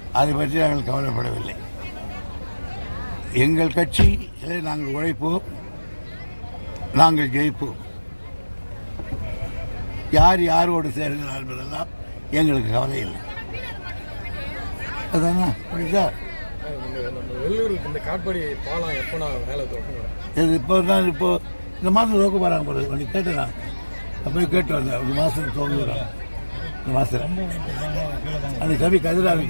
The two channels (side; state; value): both; inverted; correlation -1.00